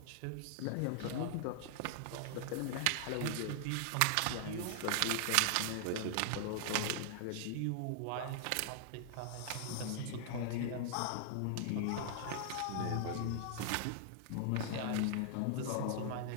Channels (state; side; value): different; both; correlation -0.01